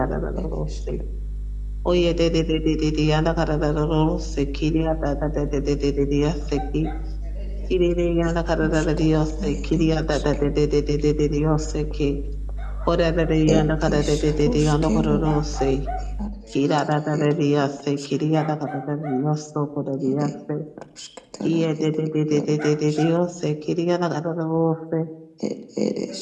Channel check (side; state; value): both; identical; correlation 1.00